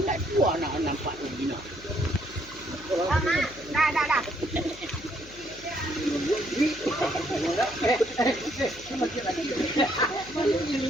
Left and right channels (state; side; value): noise; left; hum, 19 dB below the sound